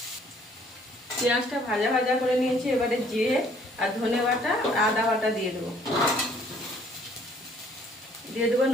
পেঁয়াজটা ভাজা ভাজা করে নিয়েছি, এবারে জিরে আর ধনে বাটা আর আদা বাটা দিয়ে দেবো। দিয়ে দেবো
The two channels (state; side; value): normal; both; correlation 0.61